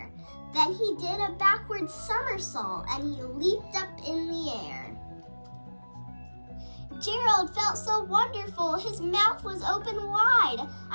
Then he did a backward somersault and he leaped up in the air. Gerald felt so wonderful, his mouth was open wide.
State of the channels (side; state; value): both; inverted; correlation -1.00